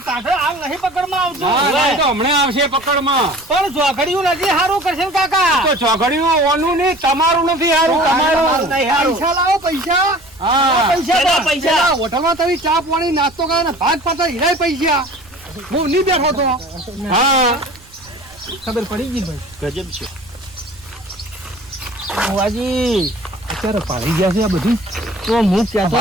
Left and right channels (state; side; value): noise; right; rumble, 26 dB below the sound